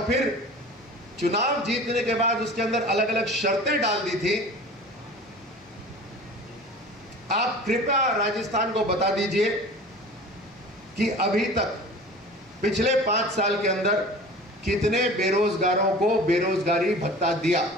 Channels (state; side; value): normal; both; correlation 0.40